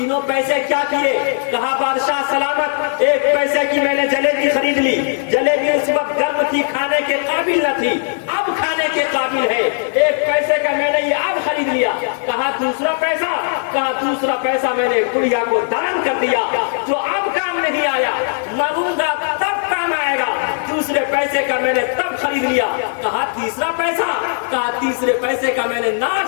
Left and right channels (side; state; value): right; silent; digital silence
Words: पैसे क्या किए? कहा बादशाह सलामत, एक पैसे की मैंने जलेबी खरीद ली। जलेबी उस वक्त गर्म थी, खाने के काबिल न थी, अब खाने के काबिल है। एक पैसे का मैंने ये अब खरीद लिया। कहा दूसरा पैसा? कहा दूसरा पैसा मैंने गुड़िया को दान कर दिया, जो अब काम नहीं आया, मरूंगा तब काम आएगा। दूसरे पैसे का मैंने तब खरीद लिया। कहा तीसरा पैसा? कहा तीसरे पैसे का मैंने